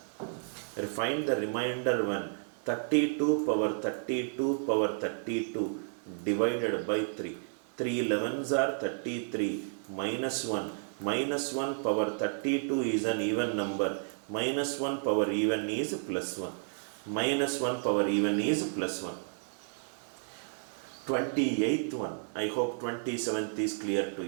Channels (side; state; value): left; silent; 56 dB below the other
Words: Find the remainder 1. 32 power 32 divided by 3. 3 11s are 33 minus 1. Minus 1 power 32 is an even number. Minus 1 power even is plus 1. Minus 1 power even is plus 1. 28th one. I hope 27th is clear to